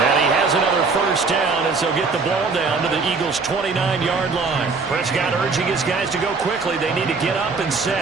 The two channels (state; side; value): quieter; left; 4.4 dB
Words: And he has another first down as they'll get the ball down to the Eagles' 29-yard line. Prescott urging his guys to go quickly. They need to get up and